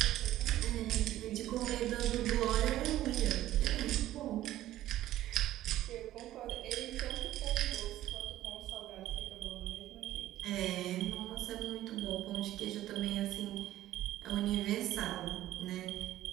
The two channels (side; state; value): left; quieter; 14.0 dB